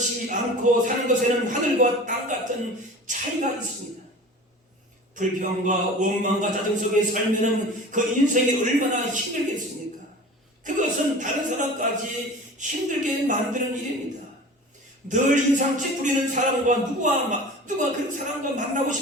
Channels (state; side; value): normal; both; correlation 0.39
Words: 않고 사는 것에는 하늘과 땅 같은 차이가 있습니다. 불평과 원망과 짜증 속에 살면은 그 인생이 얼마나 힘들겠습니까? 그것은 다른 사람까지 힘들게 만드는 일입니다. 늘 인상 찌푸리는 사람과 누가 그 사람과 만나고